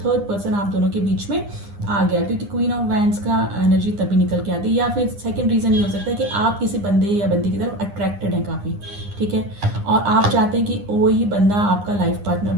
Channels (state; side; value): late; left; 9.8 ms